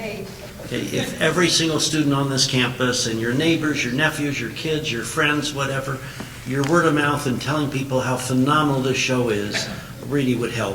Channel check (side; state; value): both; identical; correlation 1.00